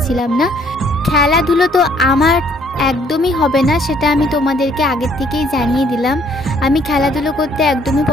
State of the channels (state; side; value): normal; both; correlation 0.63